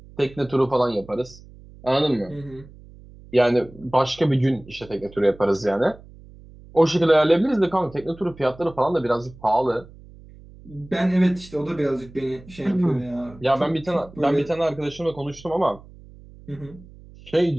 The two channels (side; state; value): right; noise; hum, 21 dB below the sound